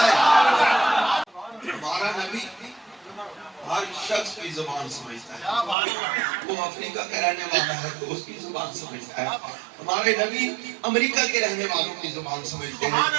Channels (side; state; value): left; drops out; at 5.8 s